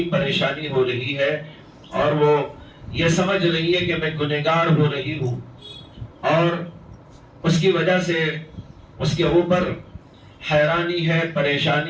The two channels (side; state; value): both; identical; correlation 1.00